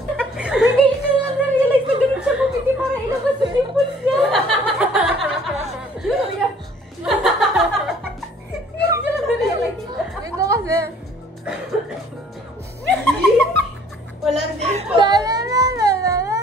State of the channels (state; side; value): normal; both; correlation 0.57